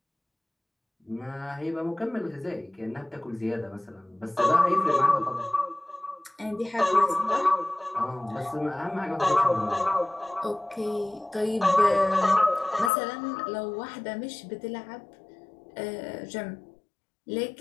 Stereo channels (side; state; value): right; drops out; at 12.9 s